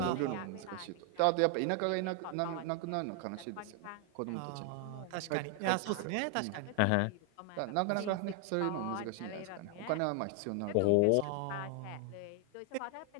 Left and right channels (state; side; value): different; both; correlation 0.00